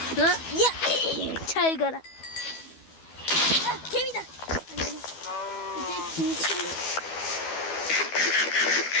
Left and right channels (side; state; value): right; late; 12 ms